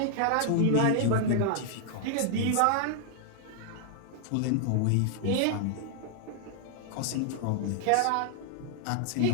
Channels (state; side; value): different; both; correlation 0.00